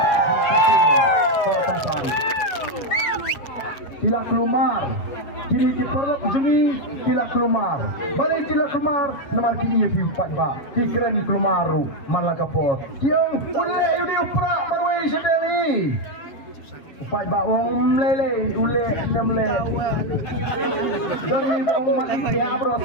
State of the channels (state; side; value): late; right; 7.2 ms